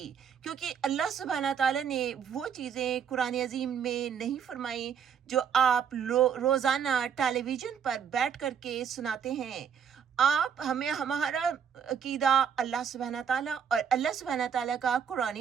کیونکہ اللہ سبحانہ تعالیٰ نے وہ چیزیں قرآن عظیم میں نہیں فرمائی جو آپ روزانہ ٹیلی ویژن پر بیٹھ کر کے سناتے ہیں۔ ہمارا عقیدہ اللہ سبحانہ تعالیٰ اور اللہ سبحانہ تعالیٰ کا قرآن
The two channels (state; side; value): quieter; left; 7.6 dB